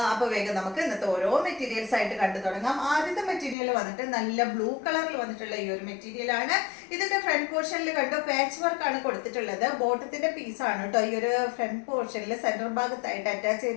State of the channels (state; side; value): drops out; right; at 3.6 s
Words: അപ്പോൾ വേഗം നമുക്ക് ഇന്നത്തെ ഓരോ മെറ്റീരിയൽസ് ആയിട്ട് കണ്ടു തുടങ്ങാം. ആദ്യത്തെ മെറ്റീരിയൽ വന്നിട്ട് നല്ല ബ്ലൂ കളറിൽ വന്നിട്ടുള്ള ഈ ഒരു മെറ്റീരിയൽ ആണ്. ഇതിന്റെ ഫ്രണ്ട് പോർഷനിൽ കണ്ടോ പാച്ച് വർക്ക് ആണ് കൊടുത്തിട്ടുള്ളത്. ബോട്ടത്തിന്റെ പീസ് ആണ് കേട്ടോ ഈ ഒരു ഫ്രണ്ട് പോർഷനിൽ സെന്റർ ഭാഗത്തായിട്ട് അറ്റാച്ച്